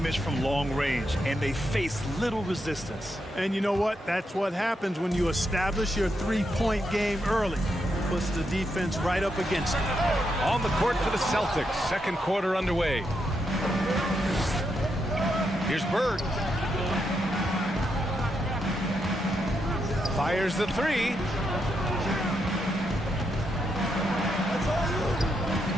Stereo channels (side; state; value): both; normal; correlation 0.82